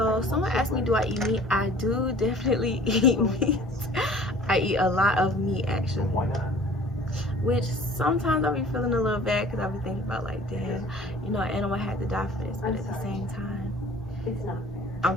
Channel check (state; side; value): normal; both; correlation 0.48